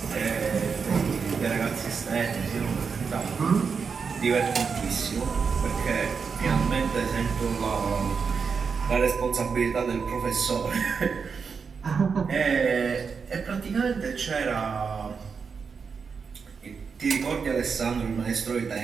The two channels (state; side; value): quieter; left; 5.7 dB